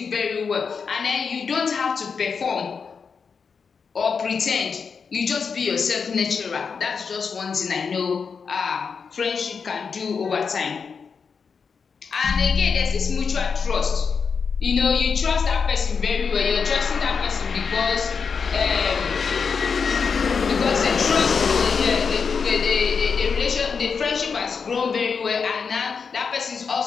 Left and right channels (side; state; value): right; quieter; 5.7 dB